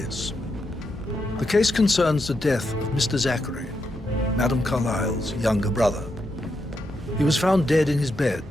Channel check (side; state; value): both; normal; correlation 0.83